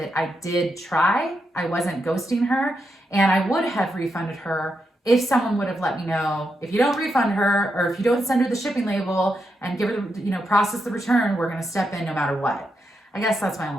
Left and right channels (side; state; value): both; normal; correlation 0.84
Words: I did try. I wasn't ghosting her, and I would have refunded her if someone would have let me know, if you don't refund her, or if you don't send her the shipping label and give her, process the return, we're going to step in no matter what. I guess that's my